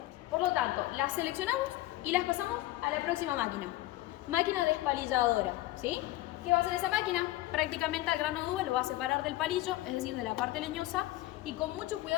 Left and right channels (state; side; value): quieter; right; 16.9 dB